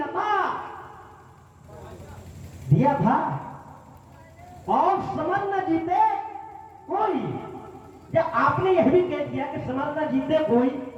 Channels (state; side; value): identical; both; correlation 1.00